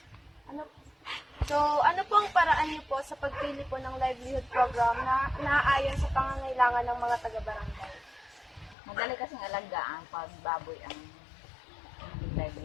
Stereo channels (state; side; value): drops out; right; at 8.8 s